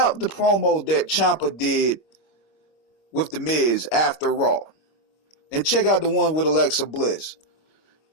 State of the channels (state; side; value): late; right; 25 ms